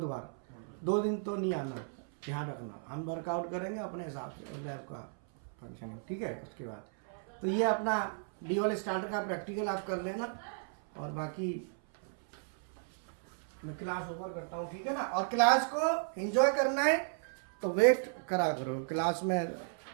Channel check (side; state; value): left; silent; 55 dB below the other